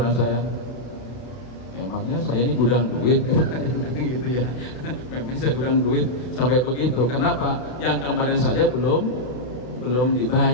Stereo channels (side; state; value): right; late; 31 ms